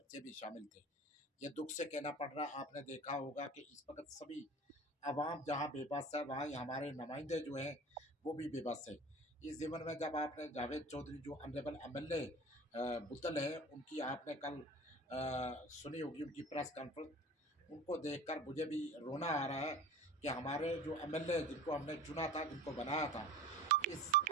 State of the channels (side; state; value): both; normal; correlation 0.40